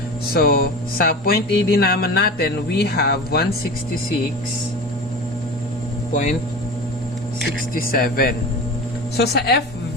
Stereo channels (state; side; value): normal; both; correlation 0.32